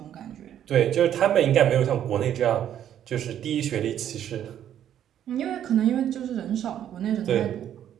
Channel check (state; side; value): quieter; left; 10.4 dB